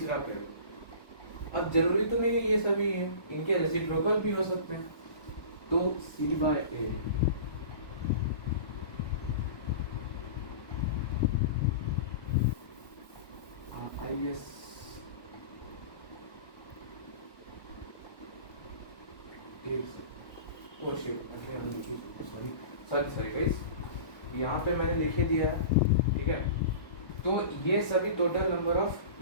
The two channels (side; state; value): right; late; 1.2 ms